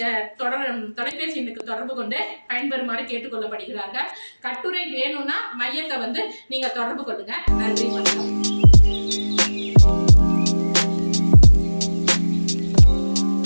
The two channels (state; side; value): inverted; both; correlation -1.00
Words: தொலைபேசி எண்ணுக்கு தொடர்பு கொண்டு பயன்பெறுமாறு கேட்டுக்கொள்ளப்படுகிறார்கள். கட்டுரை வேணும்னா மையத்தை நீங்க தொடர்பு கொள்ளுங்க. நன்றி, வணக்கம்.